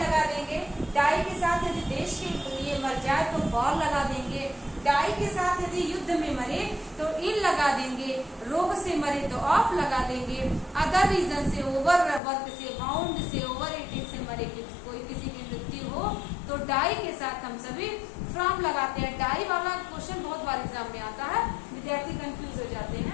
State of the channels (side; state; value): right; drops out; at 12.2 s